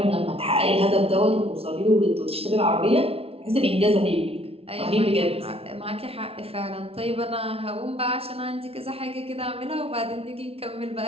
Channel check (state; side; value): late; left; 0.28 ms